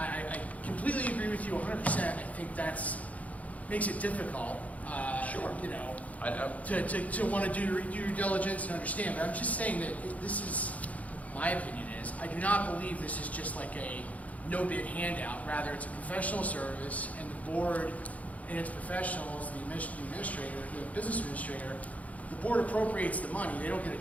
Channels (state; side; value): late; right; 0.070 ms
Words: completely agree with you 100%. I think that's makes it difficult, Sure. you know, to want to do due diligence and understand. But I'm just saying that this is, my opinion is, I do not believe this is just like a no-bid handout. Rather, it's a professional service, and the board and its professionals, the administrator, the business administrator, the board appropriates the money. They don't get